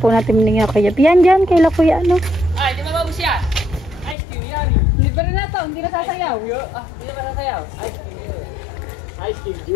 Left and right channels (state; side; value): drops out; right; at 4.2 s